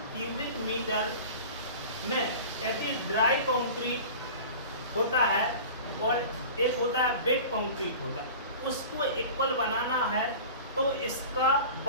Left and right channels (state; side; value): inverted; both; correlation -0.38